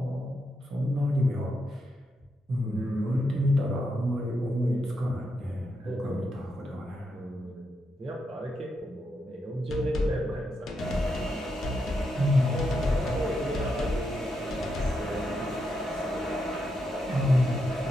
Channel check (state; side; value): normal; both; correlation 0.82